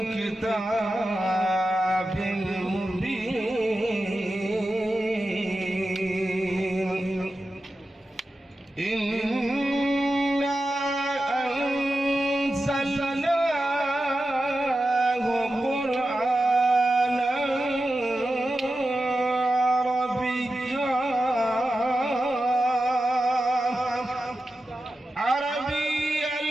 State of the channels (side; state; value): both; normal; correlation 0.92